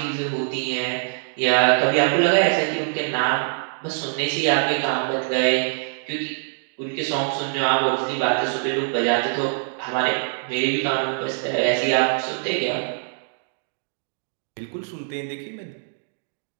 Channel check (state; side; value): silent; left; digital silence